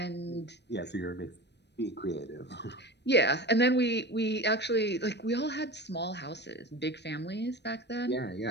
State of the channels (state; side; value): late; right; 0.50 ms